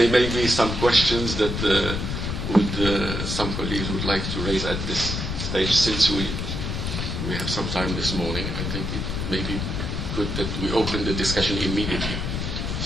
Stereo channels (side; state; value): left; noise; rumble, 3 dB below the sound